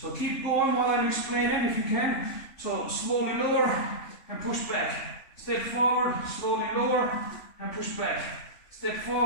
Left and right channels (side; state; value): right; late; 3.5 ms